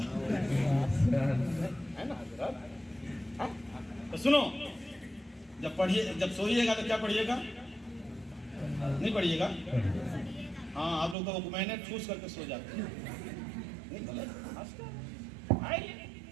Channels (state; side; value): drops out; left; at 11.2 s